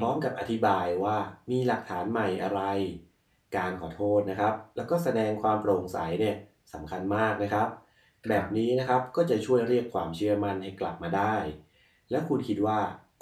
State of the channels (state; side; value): identical; both; correlation 1.00